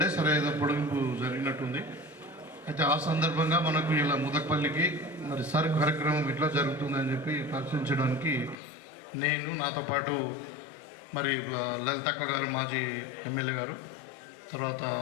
సరే ఏదో పొడిగింపు జరిగినట్టుంది. అయితే ఆ సందర్భంగా మనకు ఇలా ముదక్పల్లికి మరి సర్ కార్యక్రమం ఇట్లా జరుగుతుందని చెప్పి పరిశీలించడానికి నేను నాతో పాటు మరి లలితక్క గారు మాజీ ఎమ్మెల్యే గారు, తర్వాత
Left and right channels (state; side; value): drops out; right; at 8.6 s